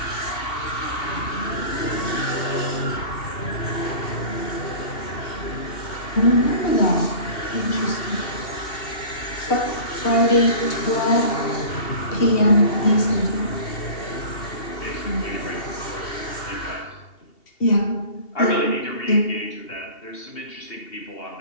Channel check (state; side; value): late; right; 2.7 ms